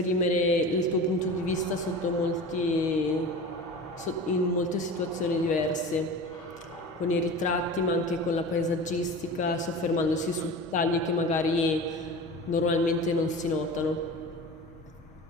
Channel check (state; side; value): normal; both; correlation 0.34